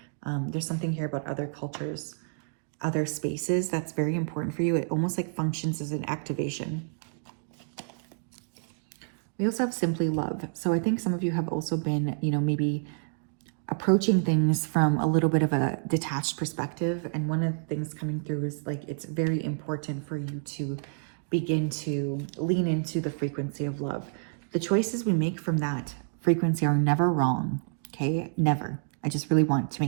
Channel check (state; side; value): silent; left; digital silence